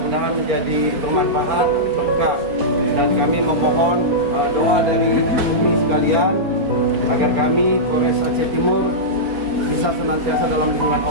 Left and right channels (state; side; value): late; left; 4.4 ms